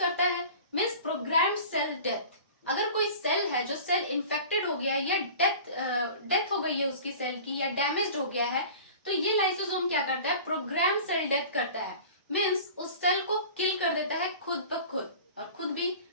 है, मींस प्रोग्राम्ड सेल डेथ। अगर कोई सेल है जो सेल इन्फेक्टेड हो गया है, या डेथ हो गई है उसकी सेल की, या डैमेज्ड हो गया है, तो ये लाइसोसोम क्या करता है? प्रोग्राम सेल डेथ करता है। मीन्स उस सेल को किल कर देता है खुद ब खुद, और खुद भी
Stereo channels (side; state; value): both; inverted; correlation -0.41